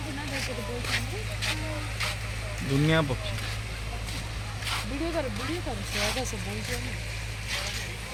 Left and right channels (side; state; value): both; identical; correlation 1.00